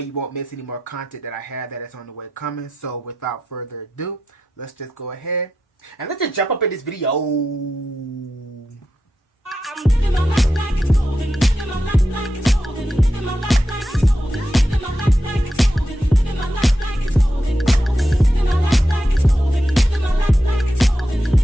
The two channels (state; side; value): normal; both; correlation 0.88